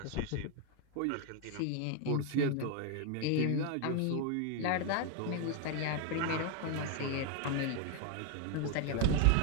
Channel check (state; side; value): different; both; correlation 0.01